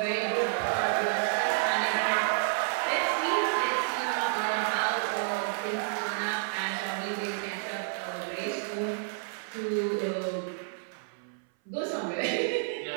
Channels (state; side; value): silent; left; 58 dB below the other